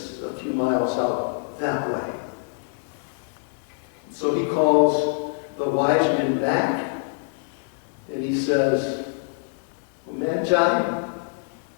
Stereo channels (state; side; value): silent; right; digital silence